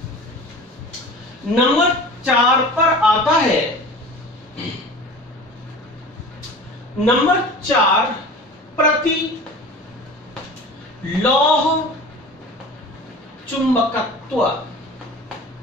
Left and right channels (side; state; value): both; normal; correlation 0.39